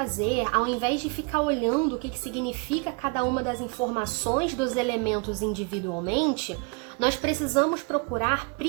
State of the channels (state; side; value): quieter; left; 31.9 dB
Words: ao invés de ficar olhando o que significa cada uma das informações dos elementos individualmente, nós precisamos procurar